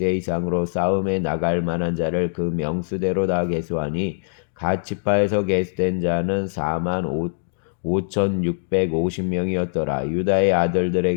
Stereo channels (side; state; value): right; silent; digital silence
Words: 이상으로 싸움에 나갈 만한 자를 그 명수대로 다 계수하니, 갓 지파에서 계수된 자는 45,650명이었더라. 유다의